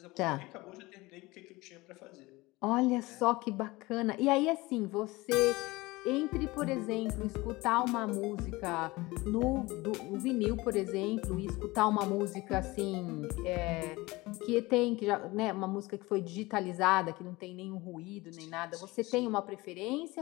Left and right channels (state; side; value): quieter; right; 21.5 dB